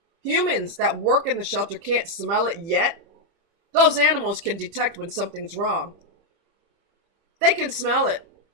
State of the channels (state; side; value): late; left; 30 ms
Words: humans that work in the shelter can't smell it yet, those animals can detect when something's wrong. They can smell it.